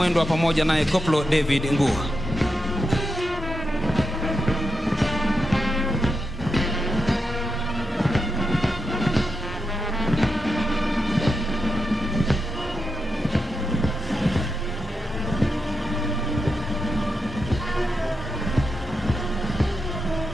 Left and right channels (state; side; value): normal; both; correlation 0.87